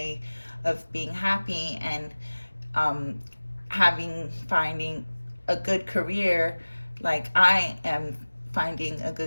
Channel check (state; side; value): inverted; both; correlation -1.00